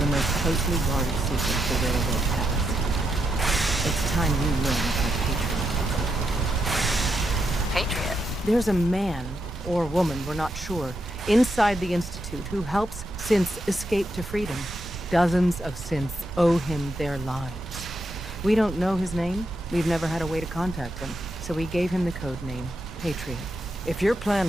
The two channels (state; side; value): normal; both; correlation 0.83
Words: most closely guarded secret the railroad has. It's time you learn about Patriot. Patriot? There's a man, or woman, we're not sure, inside the Institute who helps synths escape to freedom. Dozens of synths owe him their lives. We don't know his name. We've never had a way to contact him. So we gave him the code name, Patriot. If your